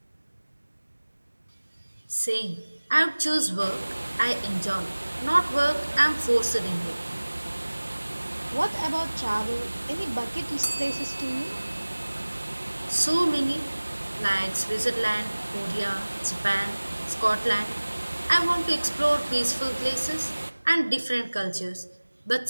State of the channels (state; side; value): inverted; both; correlation -1.00